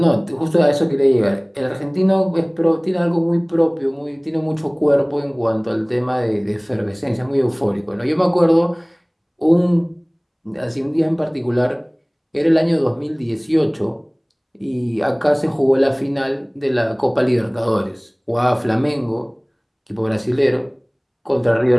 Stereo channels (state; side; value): identical; both; correlation 1.00